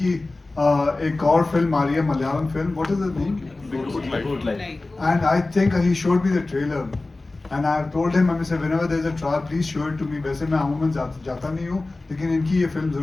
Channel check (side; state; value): right; quieter; 3.1 dB